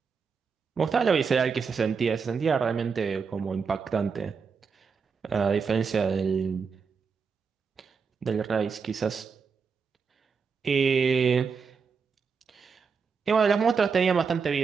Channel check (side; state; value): left; quieter; 5.6 dB